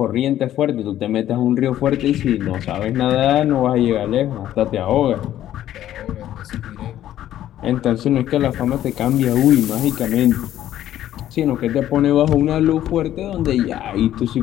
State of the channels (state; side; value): quieter; right; 12.3 dB